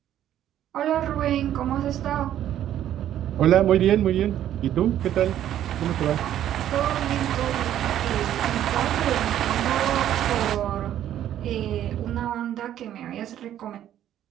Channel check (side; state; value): left; quieter; 11.4 dB